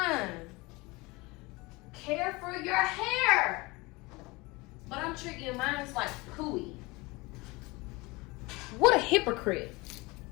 care for your hair. But I'm treating mine like pooey. What a hypocrite.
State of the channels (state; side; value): quieter; right; 23.9 dB